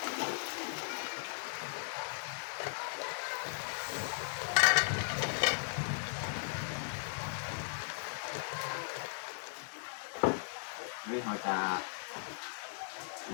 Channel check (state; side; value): silent; right; digital silence